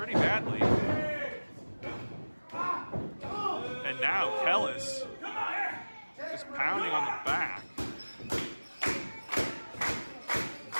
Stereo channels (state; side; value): inverted; both; correlation -1.00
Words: And now Kellis is pounding on the back.